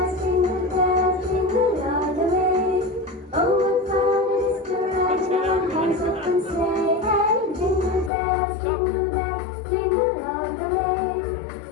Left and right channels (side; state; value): right; drops out; at 8.1 s